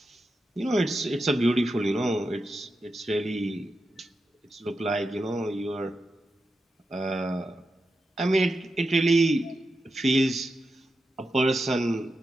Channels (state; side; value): normal; both; correlation 0.89